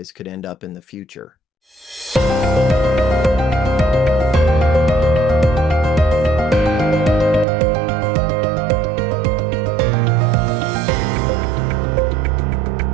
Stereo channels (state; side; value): drops out; left; at 7.5 s